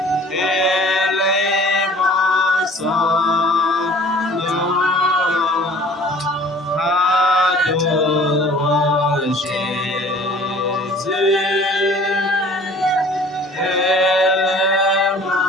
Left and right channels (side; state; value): both; normal; correlation 0.49